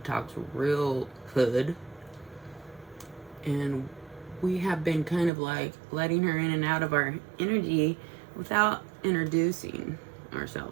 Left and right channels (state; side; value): drops out; left; at 5.3 s